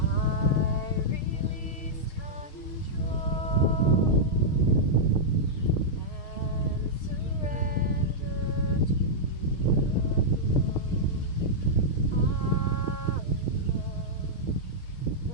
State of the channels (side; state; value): right; late; 6.5 ms